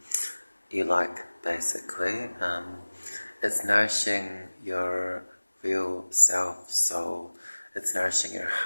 you like, basically. It's nourishing your real self, soul. It's nourishing your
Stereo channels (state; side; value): inverted; both; correlation -1.00